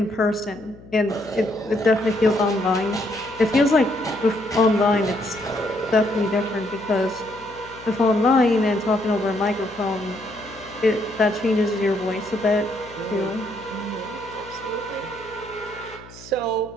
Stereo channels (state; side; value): noise; left; hum, 20 dB below the sound